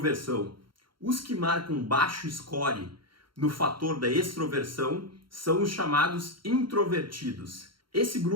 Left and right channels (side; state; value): left; late; 0.73 ms